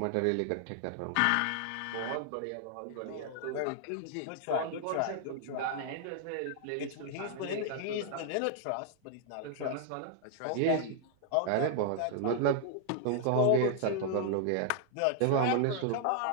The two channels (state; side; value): different; both; correlation -0.01